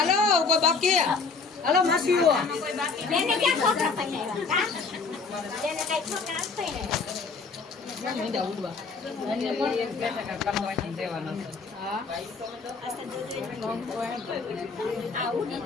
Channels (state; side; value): quieter; right; 4.6 dB